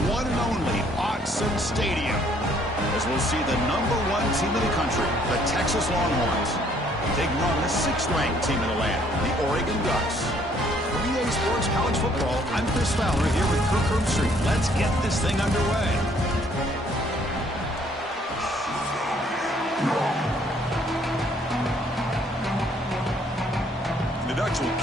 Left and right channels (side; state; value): both; normal; correlation 0.63